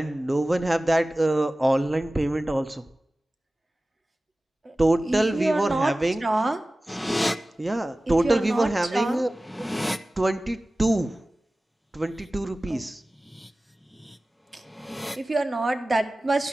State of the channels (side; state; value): both; normal; correlation 0.97